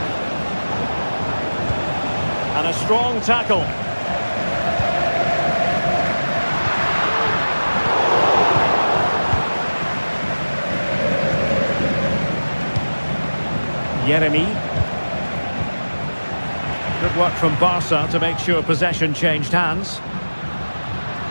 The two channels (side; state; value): both; inverted; correlation -1.00